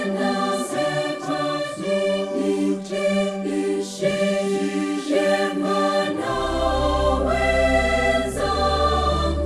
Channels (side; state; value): both; identical; correlation 1.00